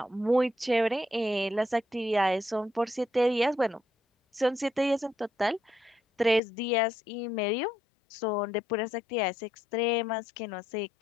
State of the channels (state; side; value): drops out; right; at 6.4 s